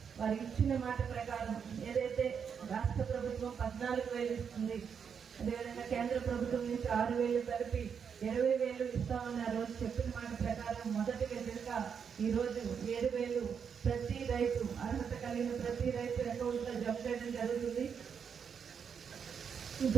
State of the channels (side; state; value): left; quieter; 6.9 dB